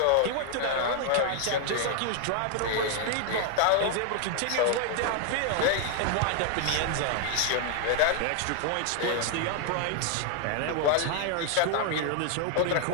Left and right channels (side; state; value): both; different; correlation 0.00